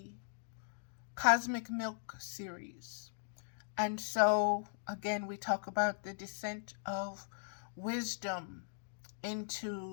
Cosmic Milk series. And so, again, we talk about the descent of wisdom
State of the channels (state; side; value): silent; right; digital silence